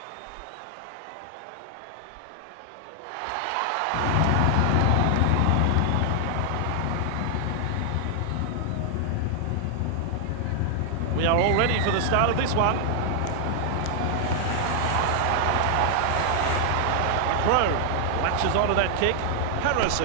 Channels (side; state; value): both; different; correlation 0.00